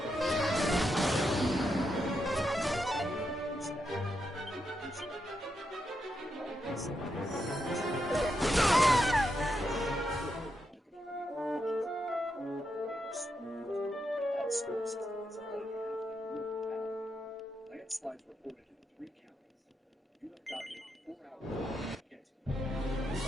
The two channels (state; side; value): normal; both; correlation 0.83